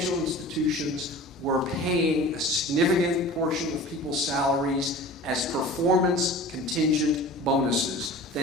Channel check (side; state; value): both; normal; correlation 0.39